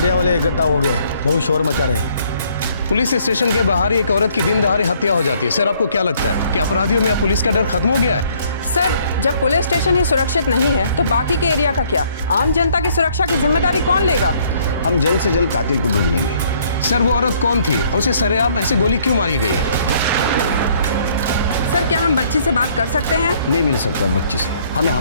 वाले इकट्ठा हो गए, बहुत शोर मचा रहे हैं। पुलिस स्टेशन के बाहर एक औरत की दिन दहाड़े हत्या हो जाती है। सर आपको क्या लगता है कि अपराधियों में अब पुलिस का डर खत्म हो गया है? सर, जब पुलिस स्टेशन ही सुरक्षित नहीं है तो बाकी के एरिया का क्या? आम जनता की सुरक्षा की जिम्मेदारी कौन लेगा? हम जल्द से जल्द कातिल को ढूंढेंगे। सर वो औरत कौन थी और उसे सरेआम ऐसे गोली क्यों मारी गई है? सर, क्या हम बच्ची से बात कर सकते हैं? नहीं मिल सकता बच्ची से, हमें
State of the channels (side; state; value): both; inverted; correlation -0.63